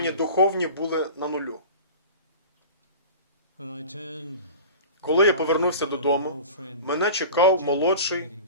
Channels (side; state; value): both; inverted; correlation -0.36